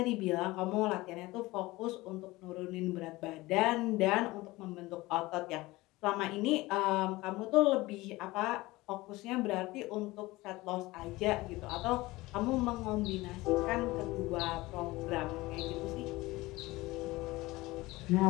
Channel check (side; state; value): right; quieter; 20.1 dB